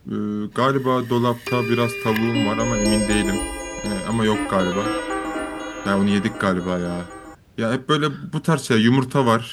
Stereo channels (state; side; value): identical; both; correlation 1.00